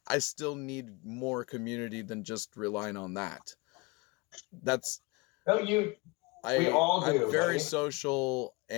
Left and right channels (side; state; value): right; quieter; 26.5 dB